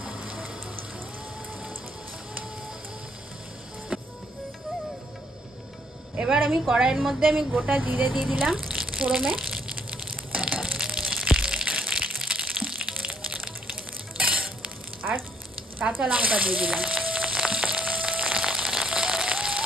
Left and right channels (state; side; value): normal; both; correlation 0.67